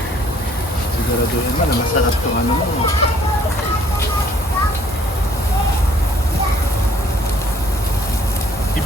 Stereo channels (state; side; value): normal; both; correlation 0.61